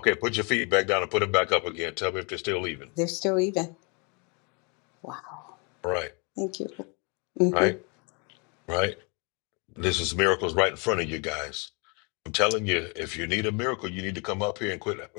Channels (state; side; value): quieter; right; 32.8 dB